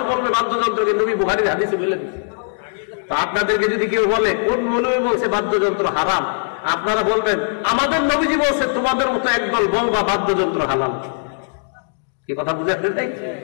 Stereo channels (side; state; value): right; silent; digital silence